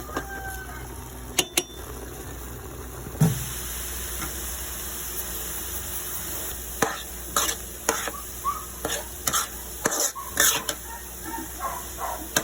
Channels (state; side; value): identical; both; correlation 1.00